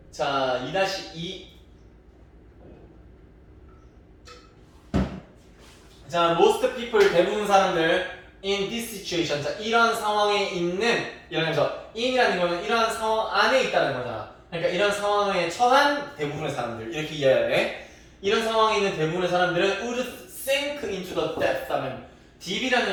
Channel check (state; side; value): identical; both; correlation 1.00